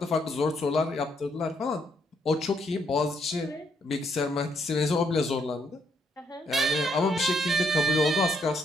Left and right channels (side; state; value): both; normal; correlation 0.73